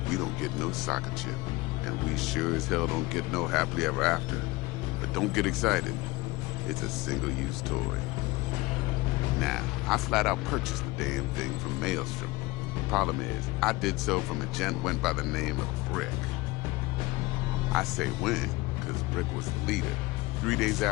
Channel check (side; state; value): right; quieter; 21.4 dB